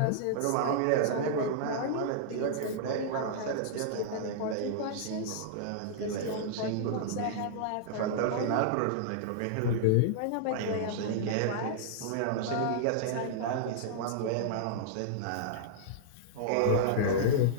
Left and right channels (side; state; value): both; different; correlation -0.02